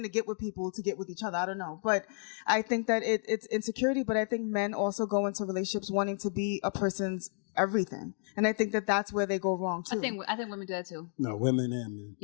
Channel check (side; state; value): right; silent; 57 dB below the other